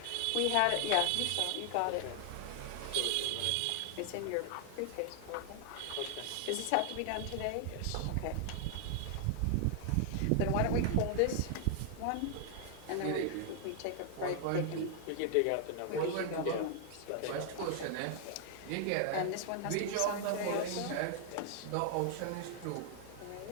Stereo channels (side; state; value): both; different; correlation 0.00